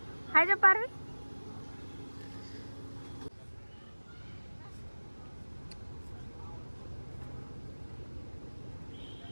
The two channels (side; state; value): both; inverted; correlation -1.00